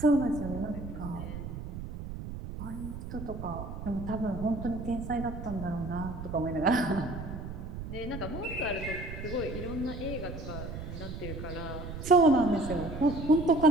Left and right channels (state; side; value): noise; right; rumble, 8 dB below the sound